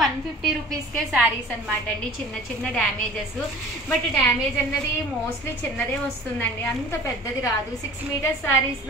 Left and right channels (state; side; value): normal; both; correlation 0.44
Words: 150 రూపీస్కే శారీస్ అనమాట అండి. చిన్న చిన్న డ్యామేజెస్, బట్ డ్యామేజ్ అన్నది మోస్ట్లీ చిన్నదే వస్తుందండి, అంత పెద్దది రాదు. 6 మీటర్స్